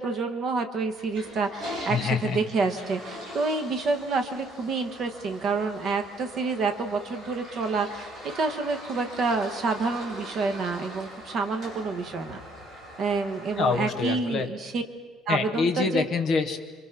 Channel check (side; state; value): both; normal; correlation 0.64